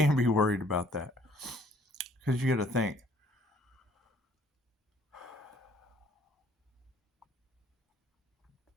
be worried about that, because you got to think.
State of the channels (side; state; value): both; normal; correlation 0.60